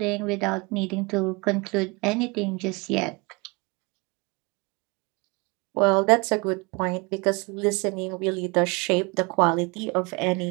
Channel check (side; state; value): left; quieter; 28.2 dB